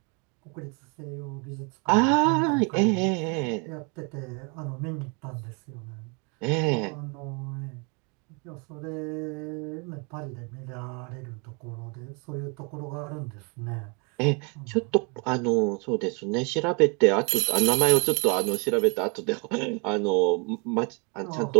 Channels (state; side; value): quieter; left; 33.9 dB